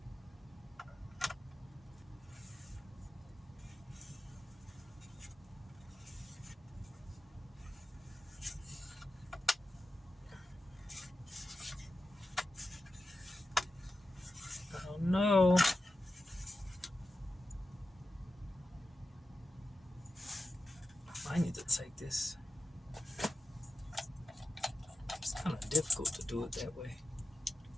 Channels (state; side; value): normal; both; correlation 0.92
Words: I don't know. I need to take this. It's kind of difficult to do it that way.